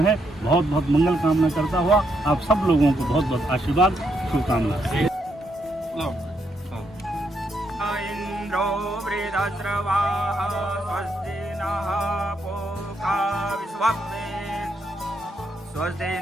हैं। बहुत बहुत मंगल कामना करता हुआ आप सब लोगों को बहुत बहुत आशीर्वाद, शुभकामना। इंद्रो वृद्धस्रवाः स्वस्ति नः पूषा तथा विश्ववेद स्वस्ति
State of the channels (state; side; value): normal; both; correlation 0.77